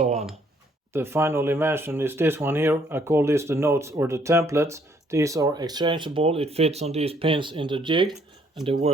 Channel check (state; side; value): normal; both; correlation 0.66